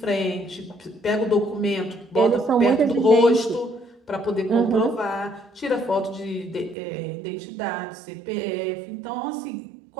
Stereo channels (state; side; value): drops out; left; at 6.8 s